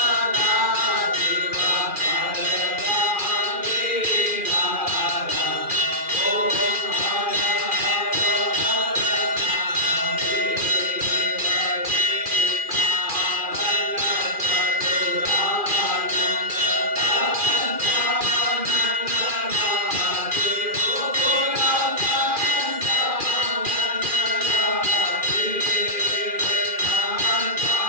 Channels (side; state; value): left; late; 2.4 ms